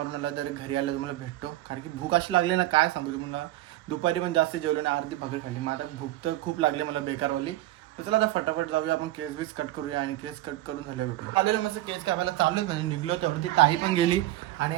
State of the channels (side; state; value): left; quieter; 15.8 dB